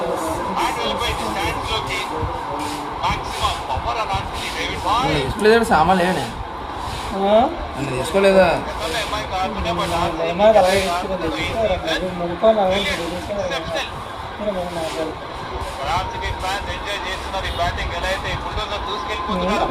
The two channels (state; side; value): identical; both; correlation 1.00